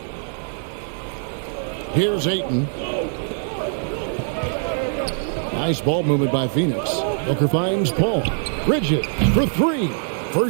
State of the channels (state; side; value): silent; left; digital silence